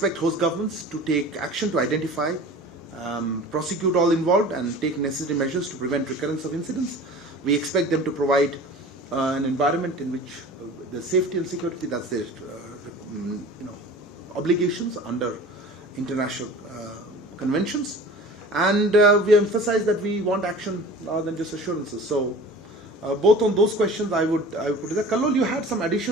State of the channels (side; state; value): both; normal; correlation 0.40